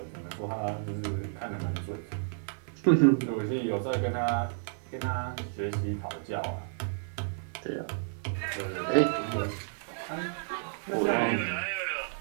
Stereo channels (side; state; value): left; silent; 56 dB below the other